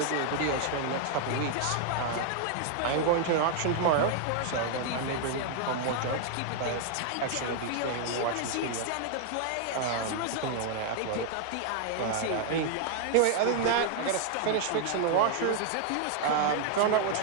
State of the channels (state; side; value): different; both; correlation 0.00